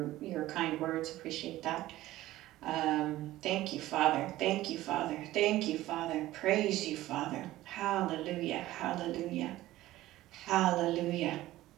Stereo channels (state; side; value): quieter; left; 15.9 dB